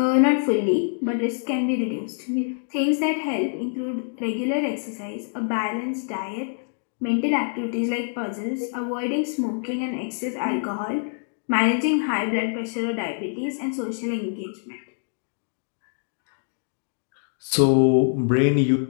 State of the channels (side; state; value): right; silent; digital silence